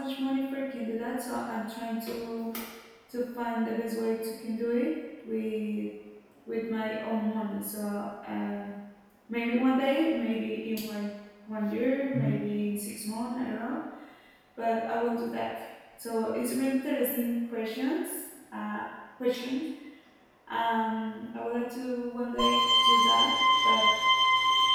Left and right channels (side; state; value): both; identical; correlation 1.00